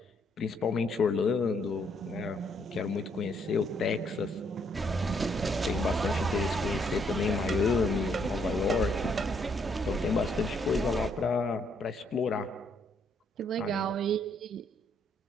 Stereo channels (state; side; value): normal; both; correlation 0.71